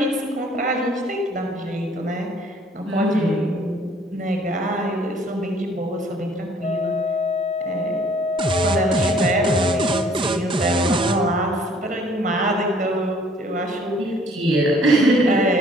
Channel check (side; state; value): both; normal; correlation 0.58